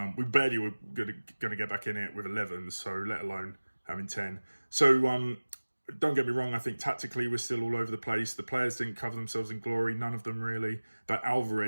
We barely were going to get back in it with 11, so let alone having 10. So don't get me wrong, I think tactically we're still all over the place. The players didn't cover themselves in glory, none of them really. But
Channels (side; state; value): both; inverted; correlation -1.00